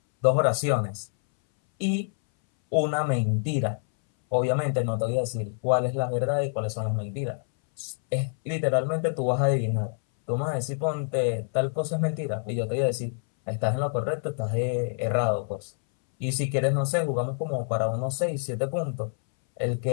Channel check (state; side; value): silent; right; 60 dB below the other